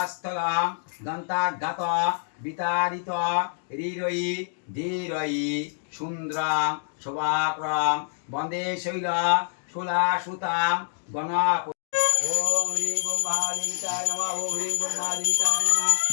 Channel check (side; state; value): right; silent; digital silence